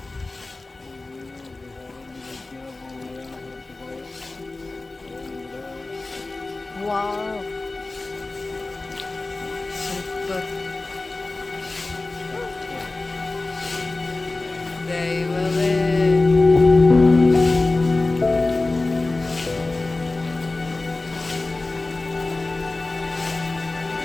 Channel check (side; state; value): right; quieter; 3.2 dB